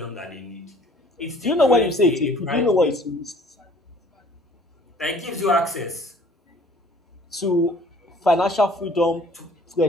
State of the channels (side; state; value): both; normal; correlation 0.54